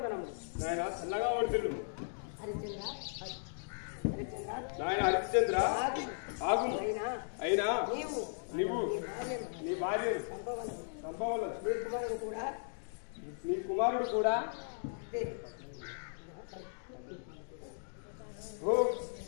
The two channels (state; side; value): silent; right; digital silence